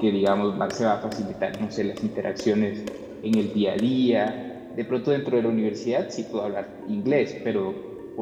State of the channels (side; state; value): both; identical; correlation 1.00